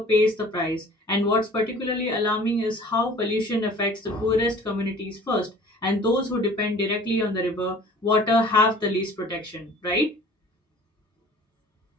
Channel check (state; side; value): normal; both; correlation 0.48